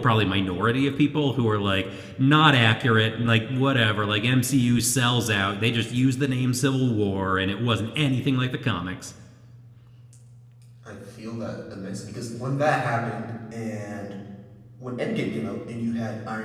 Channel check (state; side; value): identical; both; correlation 1.00